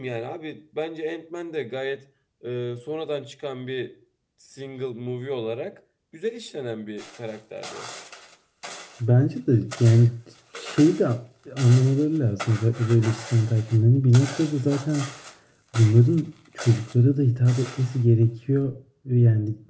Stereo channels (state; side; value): identical; both; correlation 1.00